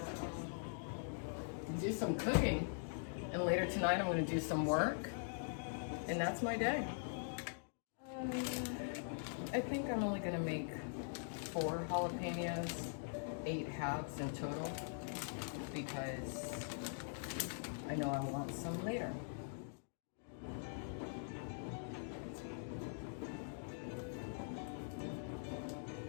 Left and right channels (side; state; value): right; silent; digital silence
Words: do some cooking, and later tonight I'm gonna do some work, and that's my day. I think I'm only gonna make 4 jalapenos, 8 halves in total, because I know I want some later.